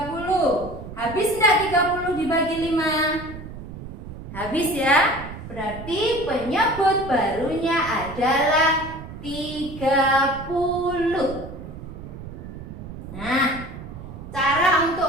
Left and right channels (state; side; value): noise; right; rumble, 12 dB below the sound